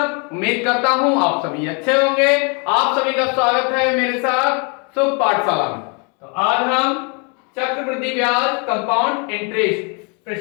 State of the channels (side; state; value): right; quieter; 35.1 dB